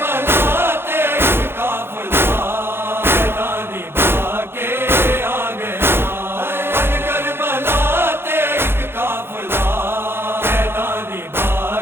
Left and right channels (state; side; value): late; left; 0.11 ms